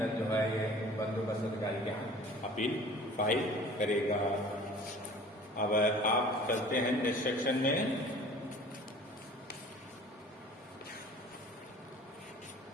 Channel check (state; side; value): normal; both; correlation 0.46